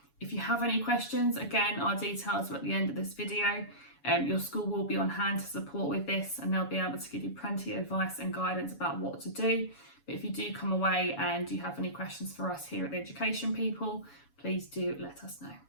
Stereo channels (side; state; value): right; late; 7.1 ms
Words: If you have any questions, again, our details are at the end of this video. Your school will be on hand to support with this and they'll be able to give you plenty of advice and guidance about what to do. But if you do come away and you have any questions for us here at The Education People, please do let us know.